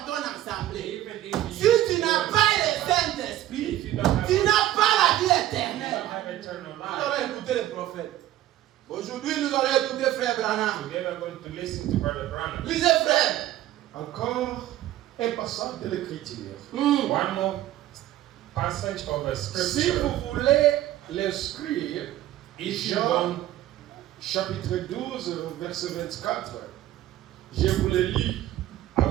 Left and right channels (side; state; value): left; quieter; 13.8 dB